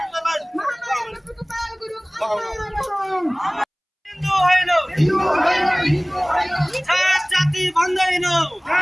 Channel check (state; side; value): identical; both; correlation 1.00